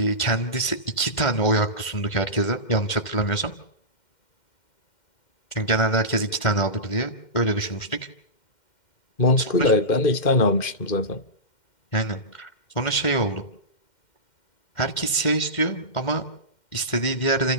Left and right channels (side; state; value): right; late; 2.1 ms